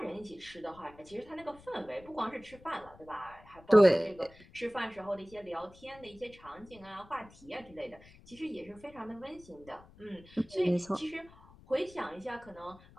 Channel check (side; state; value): left; noise; rumble, 23 dB below the sound